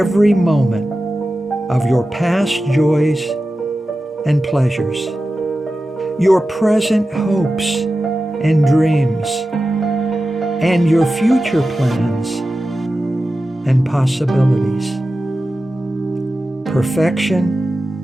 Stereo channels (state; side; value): normal; both; correlation 0.93